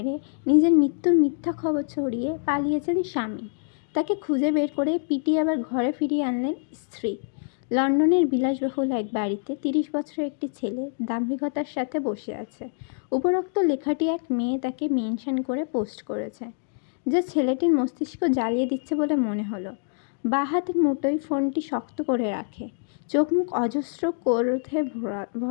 নিজের মৃত্যুর মিথ্যা খবর ছড়িয়ে পালিয়েছেন স্বামী। তাকে খুঁজে বের করে পিটিয়ে আবার ঘরে ফিরিয়ে আনলেন স্ত্রী। লন্ডনের বিলাসবহুল এক বাড়িতে 30 বছরের একটি ছেলে দাম্ভিকতার সাথে বসে আছে। উপরোক্ত লেখাটি এক মেয়ে তাকে মেনশন করে পোস্ট করেছে, যে ছেলেটির মস্তিষ্ক জ্বালিয়ে দিচ্ছে বলে মনে হলো। বাঁ হাতের মুঠোয় ফোনটি শক্ত করে রাখে, চোখ মুখ অজস্র ক্রোধে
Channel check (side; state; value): right; silent; digital silence